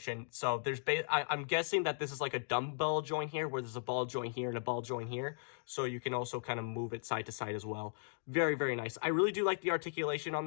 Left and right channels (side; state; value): right; silent; digital silence